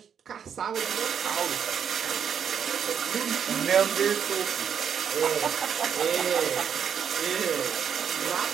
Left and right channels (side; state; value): left; quieter; 7.8 dB